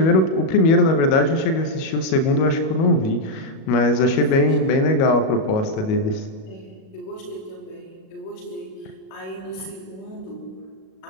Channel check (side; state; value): right; late; 37 ms